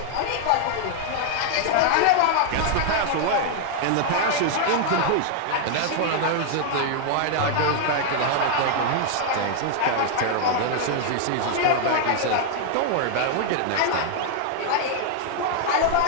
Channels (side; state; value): both; different; correlation 0.00